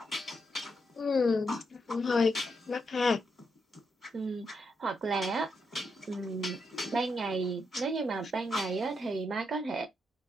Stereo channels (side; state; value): both; normal; correlation 0.81